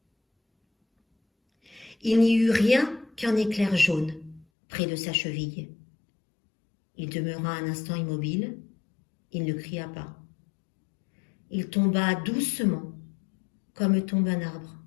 Il n'y eut rien qu'un éclair jaune près de sa cheville. Il demeura un instant immobile. Il ne cria pas. Il tomba doucement, comme tombe un arbre.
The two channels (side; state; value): right; drops out; at 4.5 s